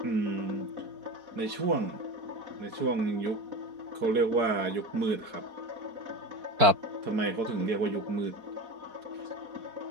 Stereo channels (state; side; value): late; left; 4.7 ms